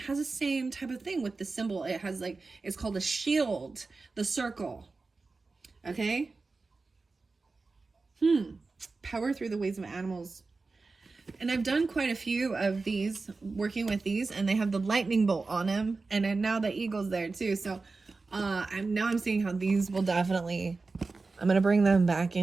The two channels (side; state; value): left; quieter; 3.9 dB